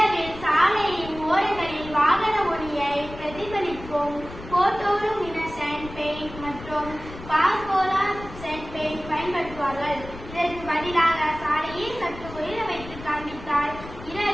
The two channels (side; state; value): left; noise; rumble, 14 dB below the sound